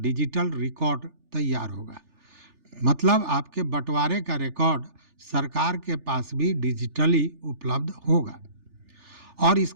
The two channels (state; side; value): late; left; 3.4 ms